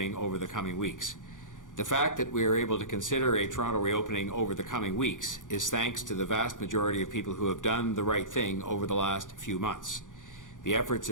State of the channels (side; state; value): right; late; 0.88 ms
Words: over the coming weeks. The fact that we are able to consider a Toronto reopening over the coming weeks is thanks to the vast majority of people who have done the right thing over the last few months. The efforts